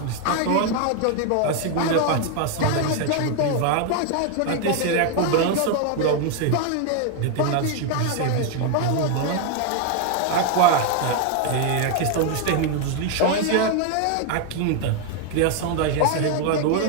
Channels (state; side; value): different; both; correlation 0.01